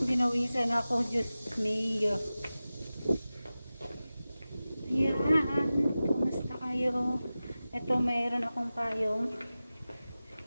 Binawisan ako. Diyos me. Yan. Kumusta kayo? Ito mayroon akong payong.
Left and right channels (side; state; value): both; inverted; correlation -0.96